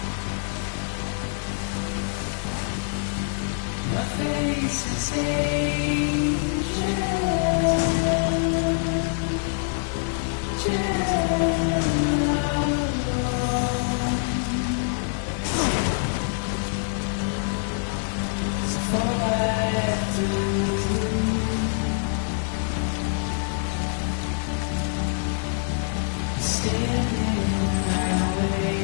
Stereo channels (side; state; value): right; silent; digital silence